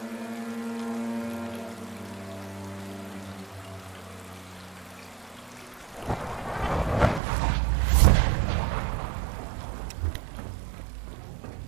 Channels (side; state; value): left; drops out; at 7.2 s